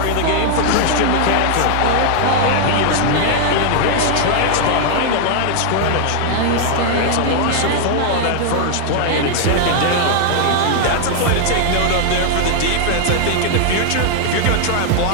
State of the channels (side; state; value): both; different; correlation 0.00